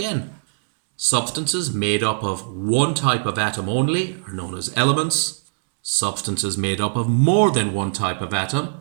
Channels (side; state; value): left; silent; digital silence